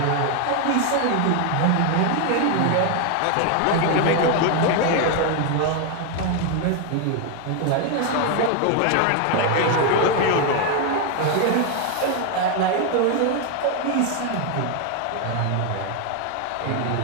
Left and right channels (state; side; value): different; both; correlation 0.01